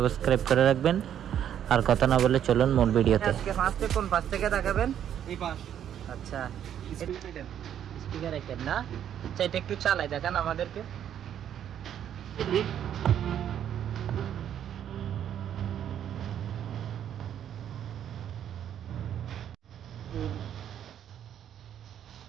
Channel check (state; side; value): quieter; left; 9.8 dB